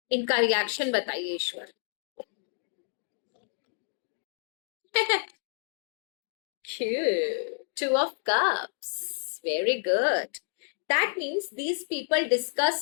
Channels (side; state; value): right; silent; 58 dB below the other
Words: इनका रिएक्शन बताइए ईश्वर। Two of cups. Very good. That means these people